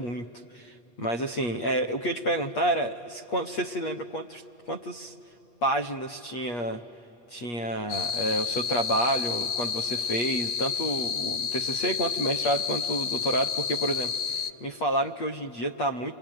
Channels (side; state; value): right; late; 8.5 ms